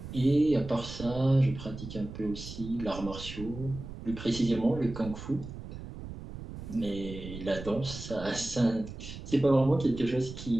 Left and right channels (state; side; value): noise; right; rumble, 11 dB below the sound